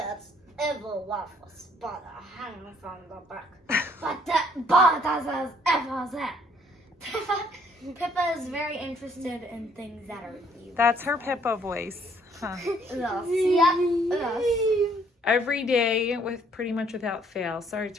everywhere for spider hanging from the back. Pippa is very interested in things that are evil. That's her Pippa voice. Huh. Yep. Every day with pretty much without fail. Sorry,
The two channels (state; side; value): normal; both; correlation 0.64